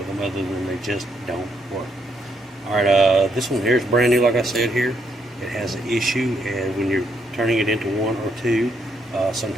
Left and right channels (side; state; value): both; normal; correlation 0.75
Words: them other than they just don't work. Alright, this one here is brand new, like I said here. It has an issue, and when you're turning it into 1 or 2,